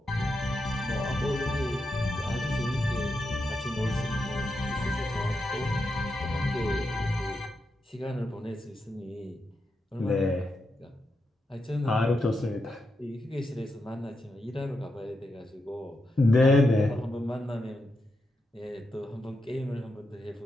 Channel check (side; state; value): both; normal; correlation 0.85